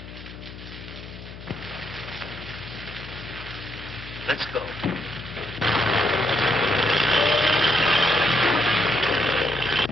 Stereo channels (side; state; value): left; noise; hum, 14 dB below the sound